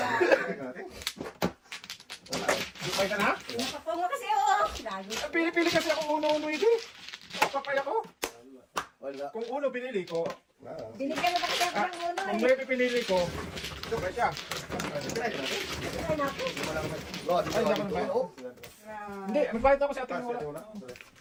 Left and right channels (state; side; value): identical; both; correlation 1.00